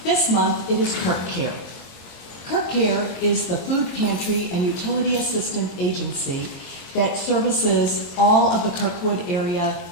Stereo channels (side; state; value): right; late; 22 ms